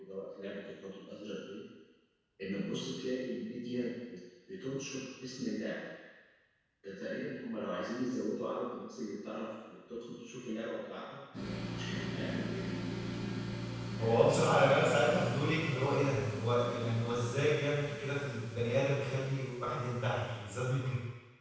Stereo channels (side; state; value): both; identical; correlation 1.00